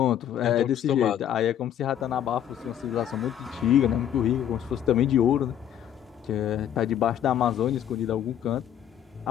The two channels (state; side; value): quieter; right; 10.2 dB